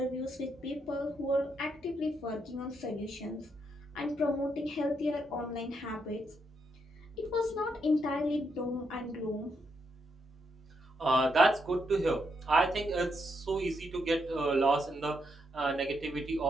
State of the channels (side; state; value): both; normal; correlation 0.79